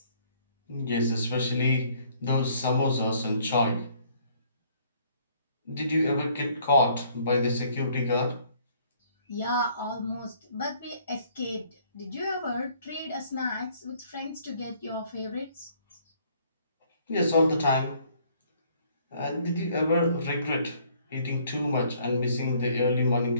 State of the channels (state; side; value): inverted; both; correlation -0.62